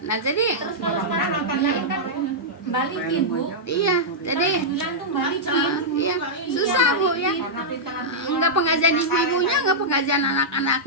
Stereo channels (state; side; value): normal; both; correlation -0.08